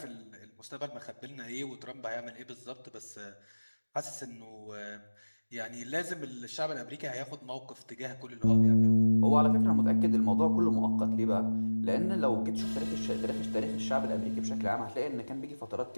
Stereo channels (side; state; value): both; inverted; correlation -1.00